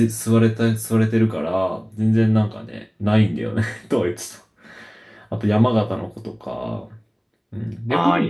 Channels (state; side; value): identical; both; correlation 1.00